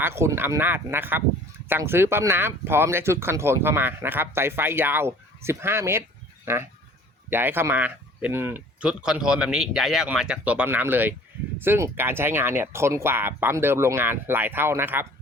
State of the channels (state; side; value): normal; both; correlation 0.50